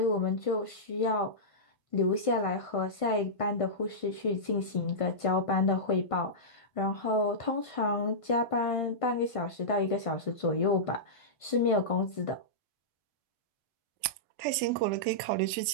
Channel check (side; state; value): right; late; 1.5 ms